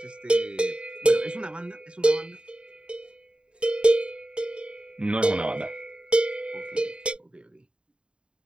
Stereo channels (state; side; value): late; left; 0.053 ms